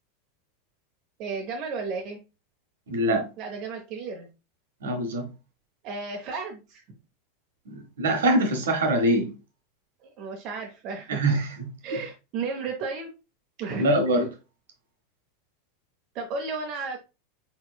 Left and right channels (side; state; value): both; normal; correlation -0.12